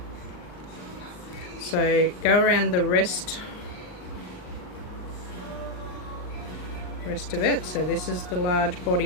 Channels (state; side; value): late; right; 39 ms